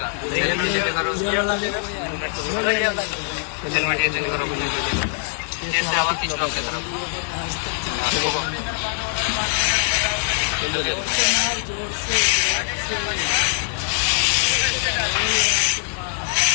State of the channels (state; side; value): silent; right; 56 dB below the other